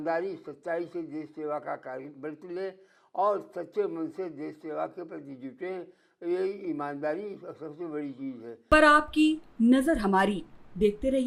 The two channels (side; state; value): both; identical; correlation 1.00